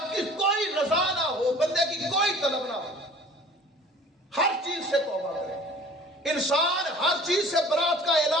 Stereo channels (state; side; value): normal; both; correlation 0.47